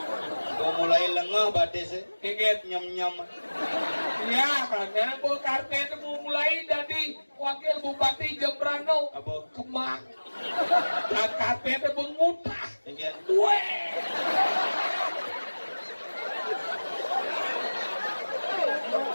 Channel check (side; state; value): both; inverted; correlation -1.00